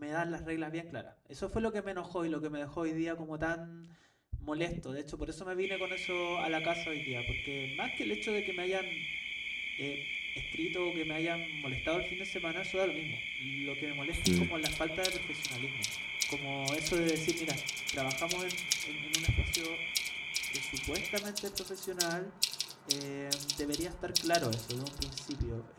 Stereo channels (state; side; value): identical; both; correlation 1.00